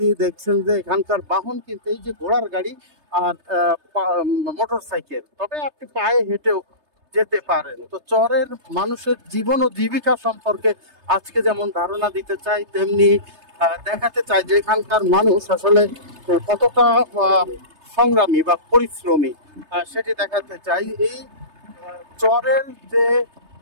দেখছেন যে এখানকার বাহন কিন্তু এই যে ঘোড়ার গাড়ি আর মোটর সাইকেল, তবে আপনি পায়ে হেঁটেও যেতে পারেন। তো চরের মানুষের জীবন ও জীবিকা সম্পর্কে আজকে যেমন ধারণা দিতে চাই, তেমনি দেখাতে চাই যে এখানকার মানুষ আসলে কতটা সংগ্রামী বা পরিশ্রমী, সেটি দেখাতে চাই। এই চরের যে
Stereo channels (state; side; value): late; left; 3.3 ms